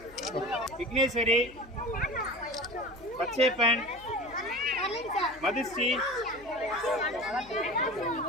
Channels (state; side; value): noise; left; hum, 22 dB below the sound